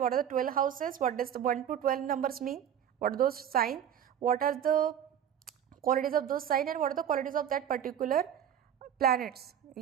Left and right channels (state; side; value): quieter; left; 9.5 dB